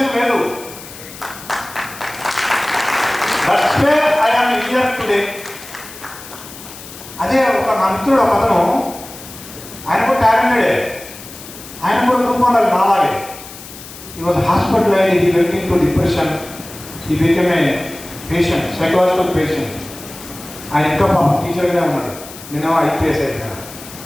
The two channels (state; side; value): noise; left; hiss, 15 dB below the sound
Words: లేదు. That's way I am here today. అదే ఒక నా మిత్రుడు ఒక అతను, ఆయన కూడా టాలెంటెడే, ఆయన కూడా గ్రూప్ 1 నాలాగే. He was hospitalized, he went into depression, he became a patient, psychological patient. ఆయన ఇంకా పాపం టీచర్గానే ఉన్నాడు, నేనేమో IPS అయిపోయాను.